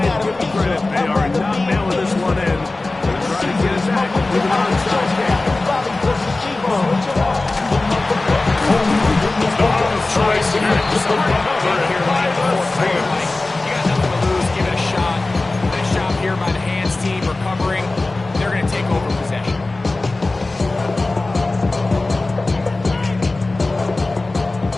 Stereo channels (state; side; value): quieter; right; 3.1 dB